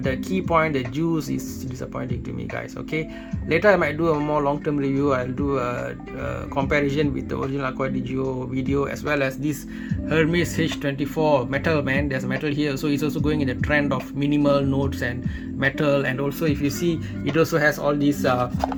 the key point, the juice, is disappointing to me, guys. Okay, later I might do a more long-term review. I'll do a comparison with the original Acqua di Gio video, as well as this Hermes H24 metal, man. There's metal here, so it's also going in the trend of minimal notes and metal. And also, if you see, it also has all these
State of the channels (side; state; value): both; identical; correlation 1.00